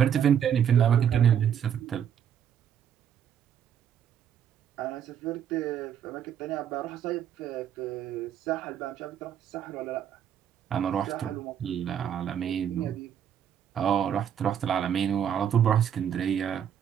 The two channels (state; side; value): quieter; left; 9.0 dB